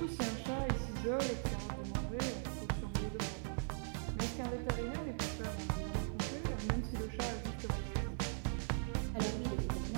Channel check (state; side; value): silent; left; 51 dB below the other